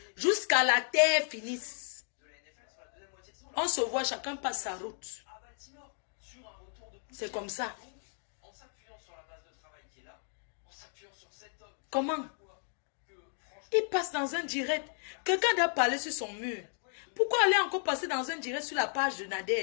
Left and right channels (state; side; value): silent; right; 55 dB below the other